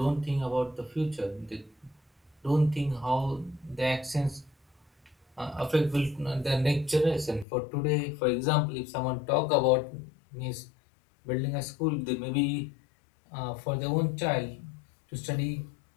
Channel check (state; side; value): drops out; right; at 7.5 s